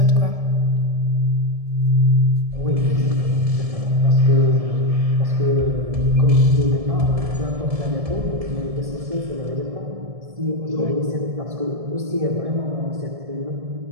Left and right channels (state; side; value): late; left; 1.7 ms